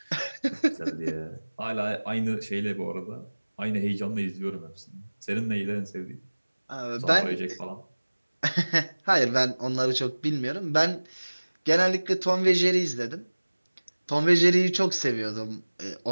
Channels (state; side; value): inverted; both; correlation -1.00